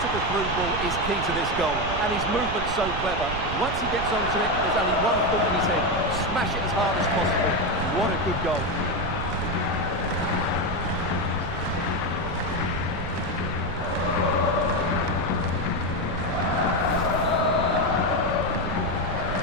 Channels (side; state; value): right; noise; rumble, 7 dB below the sound